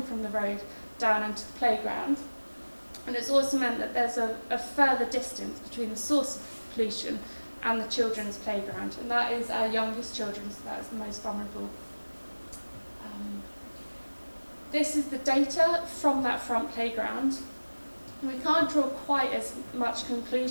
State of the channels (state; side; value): inverted; both; correlation -1.00